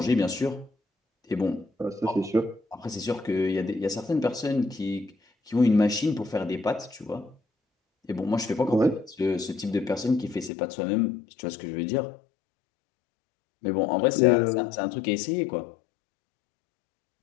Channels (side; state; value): right; drops out; at 10.5 s